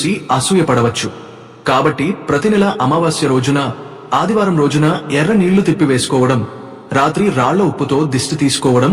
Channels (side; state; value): both; identical; correlation 1.00